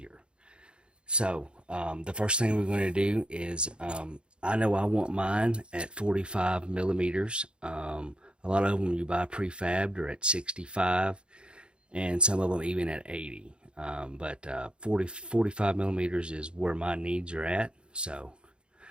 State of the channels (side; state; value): left; late; 0.054 ms